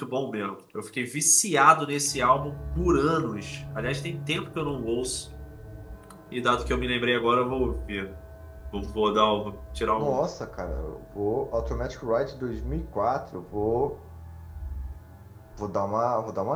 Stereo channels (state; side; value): identical; both; correlation 1.00